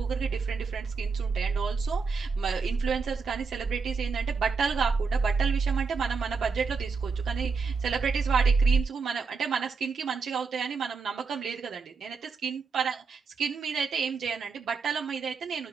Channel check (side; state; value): left; quieter; 5.0 dB